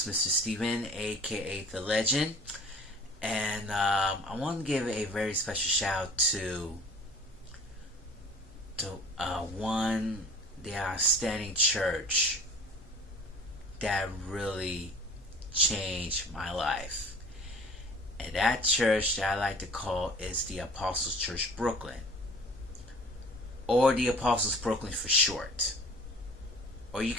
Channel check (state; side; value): normal; both; correlation 0.48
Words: Mr. Steven, aka The Legend, and I want to give a very special shout out to the outstanding church that really changed my life. And that church that I like to call is the Apostles Church Brooklyn, or the Apostles Brooklyn for short. Or you